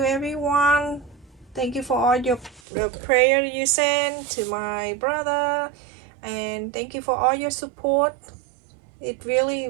everyone. Thank you for all your prayer you send to my brother, and thank you for all your support. It's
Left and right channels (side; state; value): left; drops out; at 2.6 s